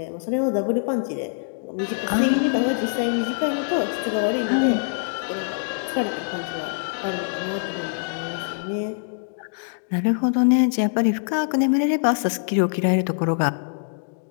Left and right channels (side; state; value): right; silent; digital silence